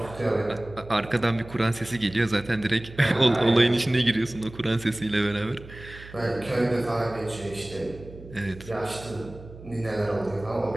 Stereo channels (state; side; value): noise; right; hum, 17 dB below the sound